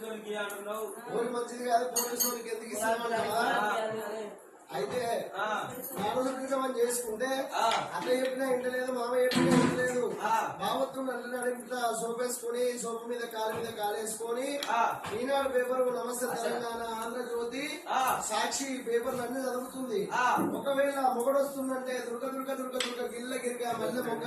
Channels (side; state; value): both; identical; correlation 1.00